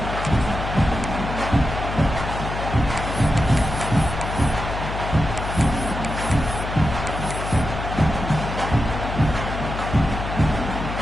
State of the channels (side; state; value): left; noise; hum, 5 dB below the sound